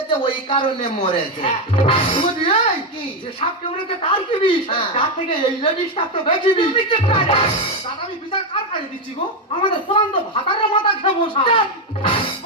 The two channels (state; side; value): normal; both; correlation 0.07